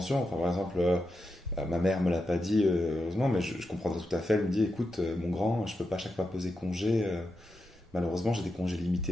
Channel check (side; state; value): both; normal; correlation 0.87